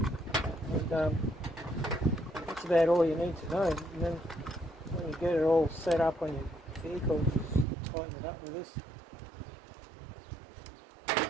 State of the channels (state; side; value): drops out; left; at 7.7 s